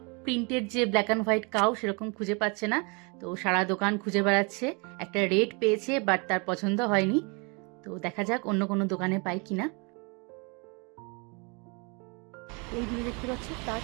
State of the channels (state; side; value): quieter; left; 31.7 dB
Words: প্রিন্টেড যে ব্ল্যাক অ্যান্ড হোয়াইট কাউ সেরকম খুঁজে পাচ্ছে না। তো সারা দোকান খুঁজে বেড়াচ্ছে, একটা রেড পেয়েছে বাট তার পছন্দ হয়নি। তো দেখা যাক অন্য কোনো দোকানে পাই কিনা। এই দূরে দেখতে পাচ্ছি তাজ,